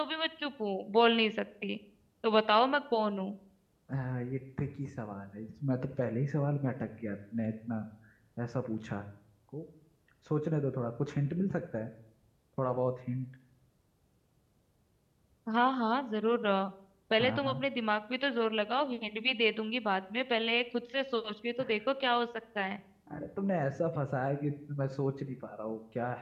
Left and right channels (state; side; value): identical; both; correlation 1.00